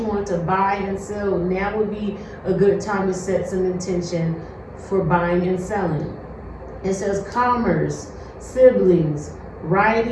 want to buy and sell, now would be a good time to set some intention for buying and selling. It says commerce, siblings,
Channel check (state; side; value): identical; both; correlation 1.00